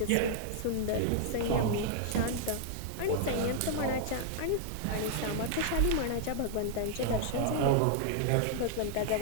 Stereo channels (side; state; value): both; different; correlation -0.01